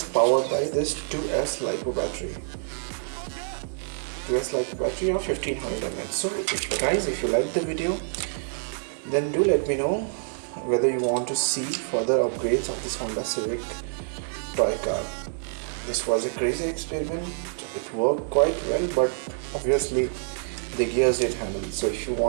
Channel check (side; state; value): left; silent; digital silence